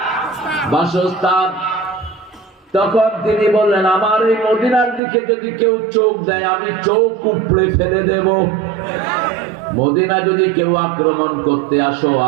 বাসস্থান। তখন তিনি বললেন, আমার এই মদিনার দিকে যদি কেউ চোখ দেয় আমি চোখ উপড়ে ফেলে দেব। মদিনা যদি কেউ আক্রমণ করতে আসো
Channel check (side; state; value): left; drops out; at 5.0 s